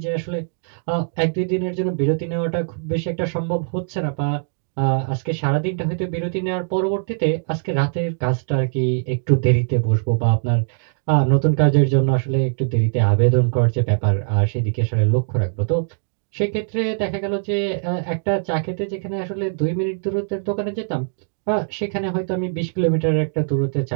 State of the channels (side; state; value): left; silent; digital silence